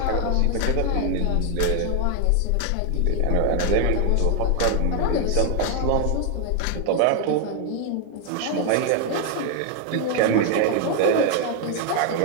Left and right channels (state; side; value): different; both; correlation 0.00